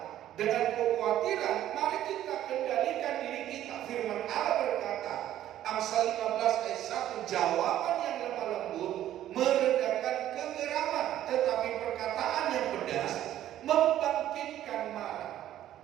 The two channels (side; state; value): left; quieter; 12.4 dB